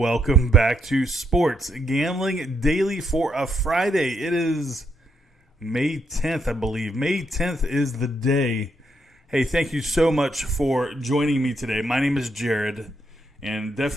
back to Sports Gambling Daily for a Friday. It is May 10th, I believe. May 10th is the day. Hey, thank you so much for joining me today. My name is Jared, and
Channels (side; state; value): both; normal; correlation 0.77